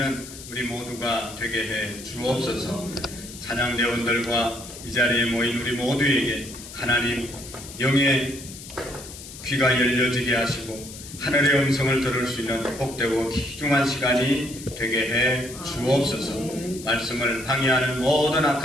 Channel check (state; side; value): noise; left; hiss, 14 dB below the sound